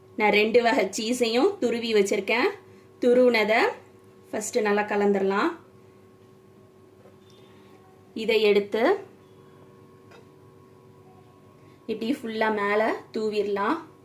நான் 2 வகை சீஸையும் துருவி வச்சுருக்கேன். துருவினதை ஃபஸ்ட்டு நல்லா கலந்துடலாம். இதை எடுத்து இப்படி ஃபுல்லாக மேலே தூவிடலாம்.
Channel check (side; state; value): both; identical; correlation 1.00